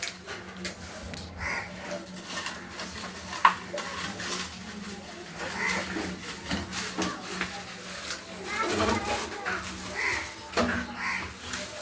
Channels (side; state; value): both; identical; correlation 1.00